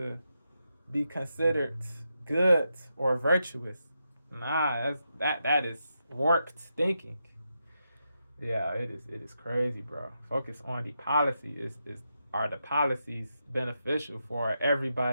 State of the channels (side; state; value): both; inverted; correlation -0.85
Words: be considered good or virtuous. Nah, that is warped thinking. Yeah, it is crazy, bro. Focus on the policy. Are the policies beneficial for